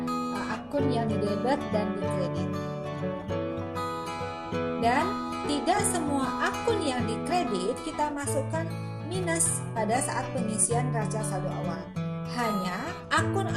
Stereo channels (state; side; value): identical; both; correlation 1.00